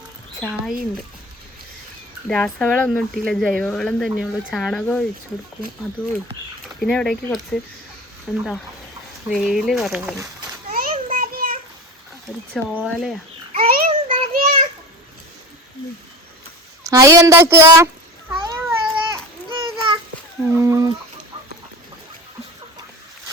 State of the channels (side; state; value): both; normal; correlation 0.32